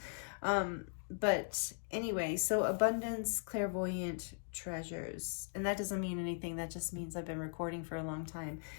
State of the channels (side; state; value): right; silent; digital silence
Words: But anyway, so abundance, clairvoyant treasures. And that doesn't mean anything. That just means I've been recording for a long time.